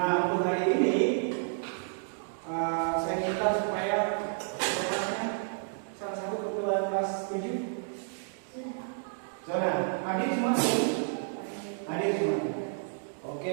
untuk hari ini saya minta supaya salah satu ketua kelas 7 Zona, hadir semua? Hadir semua. Oke,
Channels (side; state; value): left; silent; digital silence